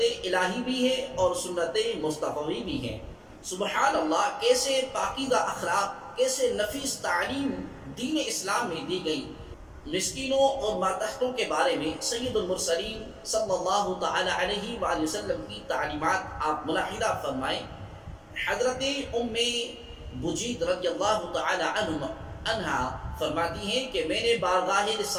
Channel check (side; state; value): both; identical; correlation 1.00